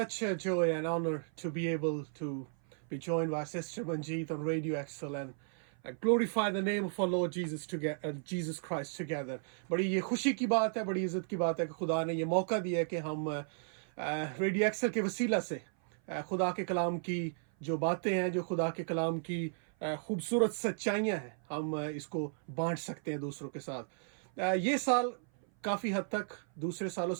a joy and honor to be able to be joined by Sister Manjeet on Radio Excel and glorify the name of our Lord Jesus Christ together. बड़ी ये खुशी की बात है, बड़ी इज्जत की बात है कि खुदा ने ये मौका दिया है कि हम रेडियो एक्सेल के वसीला से खुदा के कलाम की जो बातें हैं, जो खुदा के कलाम की खूबसूरत सच्चाइयाँ हैं, हम इसको बांट सकते हैं दूसरों के साथ। ये साल काफ़ी हद तक दूसरे सालों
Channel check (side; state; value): left; silent; 55 dB below the other